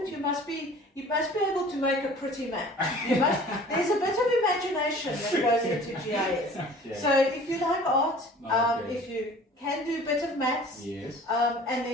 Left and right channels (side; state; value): both; normal; correlation 0.47